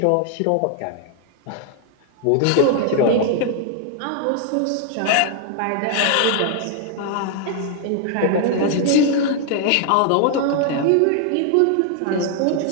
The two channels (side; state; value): both; different; correlation 0.00